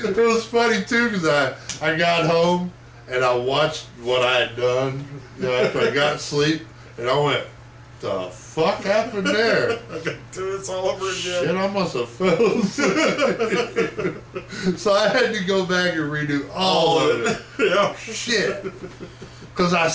was funny too because I got home and I watched what I had done after I got sleep, and I went, the fuck happened there? I got to do this all over again. Shit, I must have fell asleep. So I had to go back and redo all of it. Yeah. Shit. Because I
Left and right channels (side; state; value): both; identical; correlation 1.00